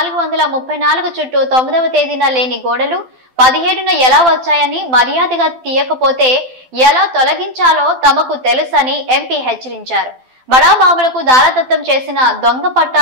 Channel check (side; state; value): left; late; 12 ms